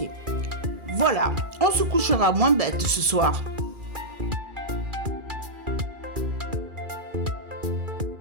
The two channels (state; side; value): late; left; 2.4 ms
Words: Voilà, on se couchera moins bête ce soir.